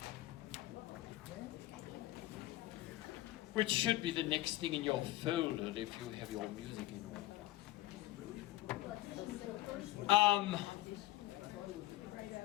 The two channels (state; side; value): quieter; right; 16.8 dB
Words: Which should be the next thing in your folder if you have your music in order.